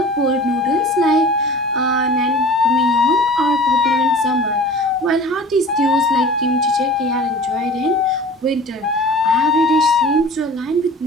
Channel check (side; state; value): both; normal; correlation 0.41